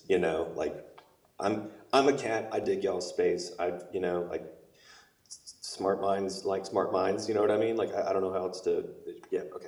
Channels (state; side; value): identical; both; correlation 1.00